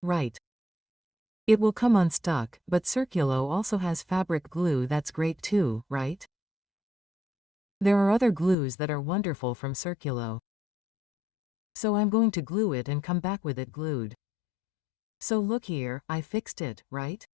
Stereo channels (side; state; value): right; drops out; at 8.6 s